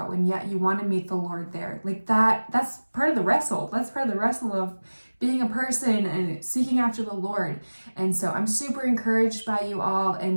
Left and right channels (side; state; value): both; inverted; correlation -1.00